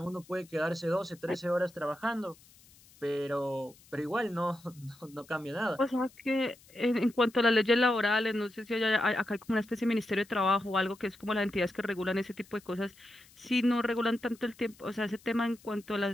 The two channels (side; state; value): left; noise; hiss, 26 dB below the sound